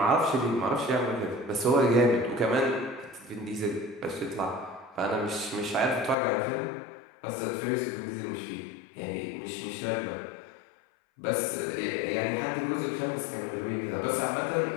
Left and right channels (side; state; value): right; drops out; at 6.2 s